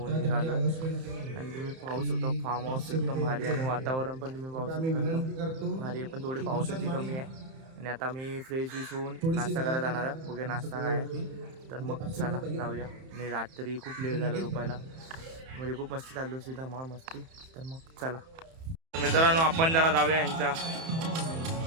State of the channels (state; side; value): late; left; 31 ms